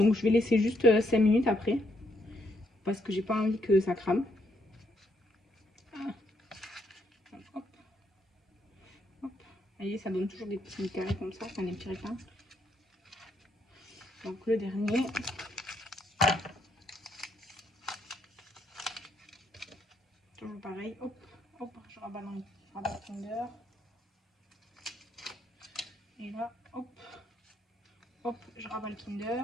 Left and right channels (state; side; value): normal; both; correlation 0.74